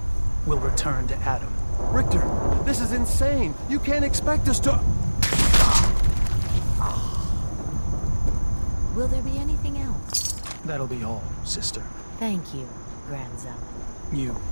will return to Adam. Richter, this is insane. You can't expect us to... Will there be anything else? That'll be all, sister. Thank you, Grand Zealot. You.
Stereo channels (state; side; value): inverted; both; correlation -1.00